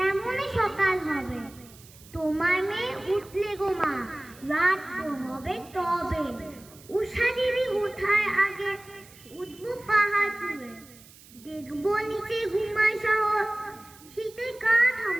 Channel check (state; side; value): noise; right; hiss, 22 dB below the sound